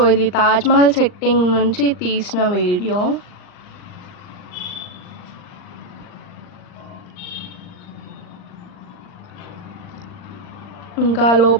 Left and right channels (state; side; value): late; right; 39 ms